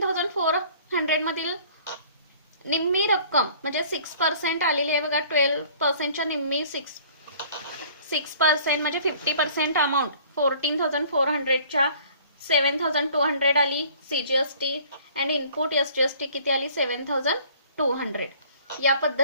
मधील निम्मी रक्कम म्हणजे 6% आलेली आहे. बघा, 12%च्या निम्मी 6% म्हणजे 50% अमाऊंट 14,400च्या 7,200 आली CGST अँड इनपुट SGST किती आली 7,200. या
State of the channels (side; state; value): both; inverted; correlation -0.52